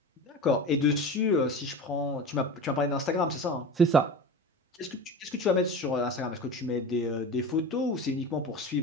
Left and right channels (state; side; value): normal; both; correlation 0.31